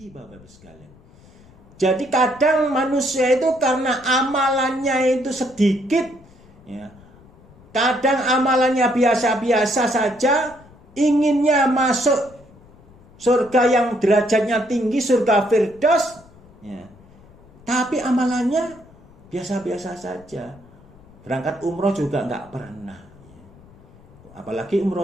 Bapak Ibu sekalian. Jadi kadang manusia itu karena amalannya itu sedikit, ya, kadang amalannya biasa-biasa saja, inginnya masuk surga yang derajatnya tinggi, surga Firdaus, ya, tapi amalannya biasa-biasa saja. Berangkat umroh juga nggak pernah, ya. Apalagi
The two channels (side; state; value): left; noise; rumble, 25 dB below the sound